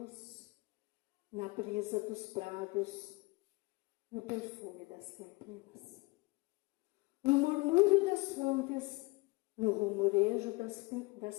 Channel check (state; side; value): quieter; right; 24.6 dB